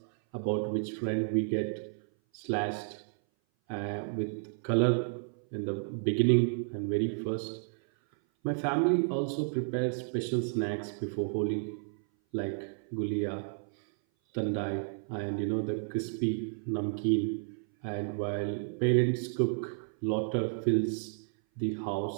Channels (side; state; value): left; silent; 57 dB below the other